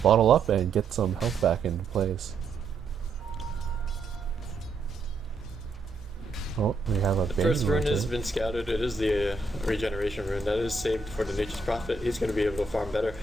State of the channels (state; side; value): quieter; left; 3.7 dB